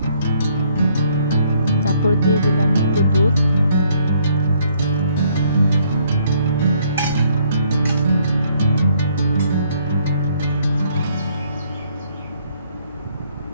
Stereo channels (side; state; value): both; inverted; correlation -0.66